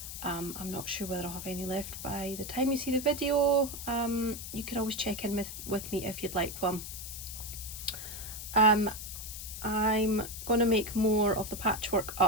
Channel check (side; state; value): left; noise; hiss, 9 dB below the sound